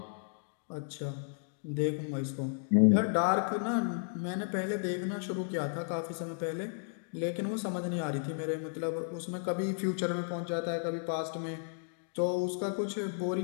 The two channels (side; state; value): right; silent; digital silence